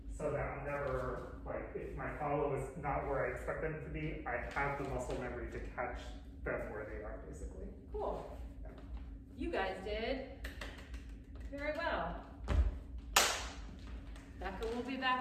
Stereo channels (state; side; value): identical; both; correlation 1.00